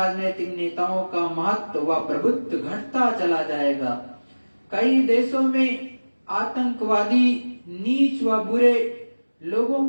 नेताओं का महत्व व प्रभुत्व घटता चला जाएगा। कई देशों में आतंकवादी, नीच व बुरे लोगों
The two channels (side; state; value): both; inverted; correlation -1.00